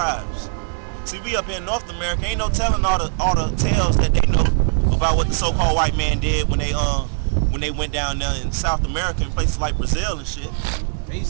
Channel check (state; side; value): silent; left; 65 dB below the other